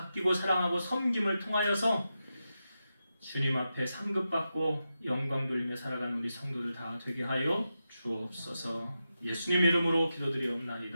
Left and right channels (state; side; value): inverted; both; correlation -0.89